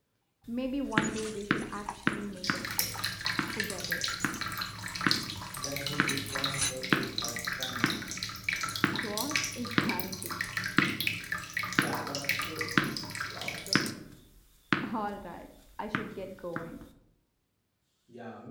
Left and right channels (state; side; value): identical; both; correlation 1.00